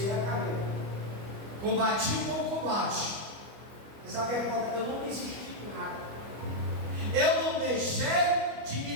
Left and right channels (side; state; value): left; late; 25 ms